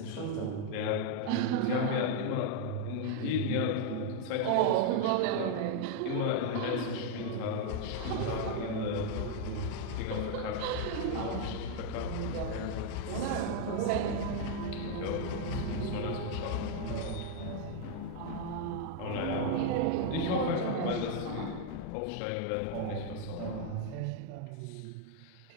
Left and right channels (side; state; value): both; different; correlation 0.00